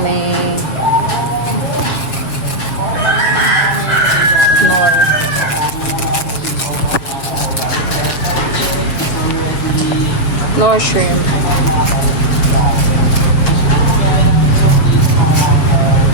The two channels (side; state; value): right; late; 7.1 ms